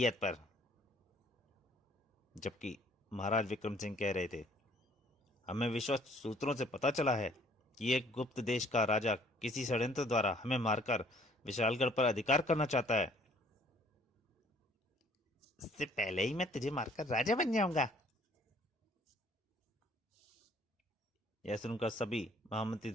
पर। जबकि महाराज विक्रम सिंह कह रहे थे, हमें विश्वस्त सूत्रों से पता चला है कि एक गुप्त देश का राजा किसी षड्यंत्र द्वारा हमें मारकर विशालगढ़ पर अधिकार करना चाहता है। इससे पहले ही मैं तुझे मारकर राजा बन जाऊंगा। यह सुनकर सभी महामंत्री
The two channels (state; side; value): normal; both; correlation 0.59